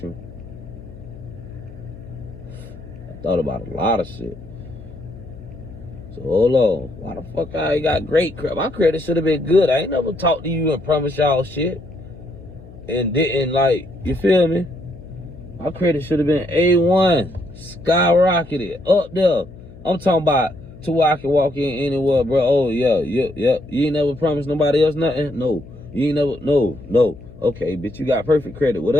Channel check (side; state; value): left; noise; hum, 19 dB below the sound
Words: I thought about a lot of shit. So hold on, why the fuck I ain't got great credit? My credit should have been good. I ain't never talked to you and promised y'all shit and didn't, like, you feel me? My credit should have been A1, skyrocketed, up there. I'm talking about to where I can walk in anywhere, bro. Oh, yeah. You ain't never promised nobody else nothing? No. You ain't never, no. Okay, bitch, you got perfect credit with